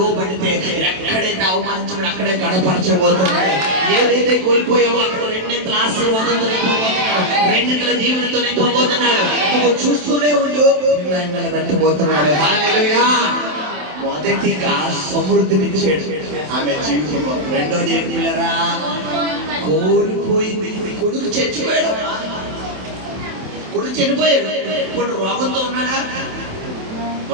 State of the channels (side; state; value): left; late; 27 ms